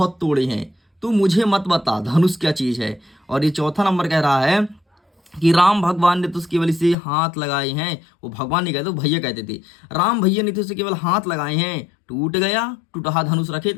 तोड़े हैं, तो मुझे मत बता धनुष क्या चीज है। और ये चौथा नंबर कह रहा है कि राम भगवान ने तो उसकी वजह से हाथ लगाए हैं, वो भगवान नहीं कहते, वो भैया कहते थे, राम भैया ने तो उसे केवल हाथ लगाए हैं, टूट गया, टूटा धनुष रखे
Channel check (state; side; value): drops out; right; at 7.0 s